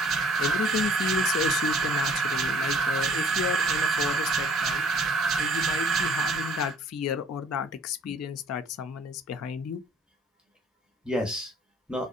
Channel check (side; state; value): both; normal; correlation 0.55